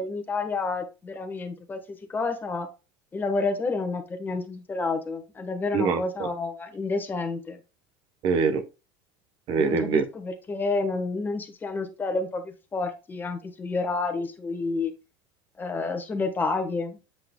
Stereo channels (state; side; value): normal; both; correlation 0.61